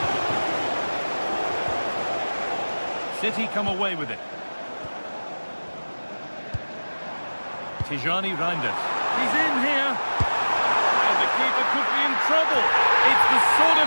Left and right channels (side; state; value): both; inverted; correlation -1.00